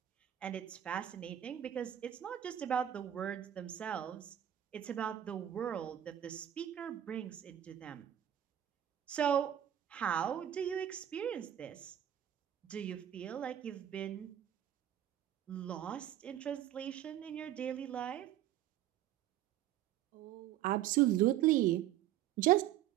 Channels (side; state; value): left; quieter; 11.5 dB